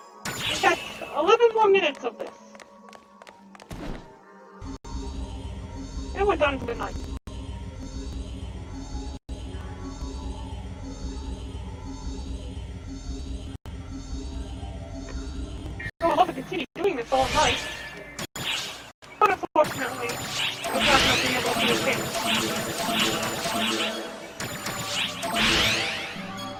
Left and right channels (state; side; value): identical; both; correlation 1.00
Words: We got 11 more minutes of this. And we're done for the night. I would love to continue doing this all night. But unfortunately, I'm not going to be able to do it.